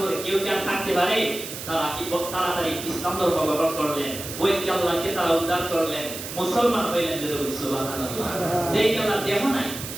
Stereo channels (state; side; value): noise; right; hiss, 9 dB below the sound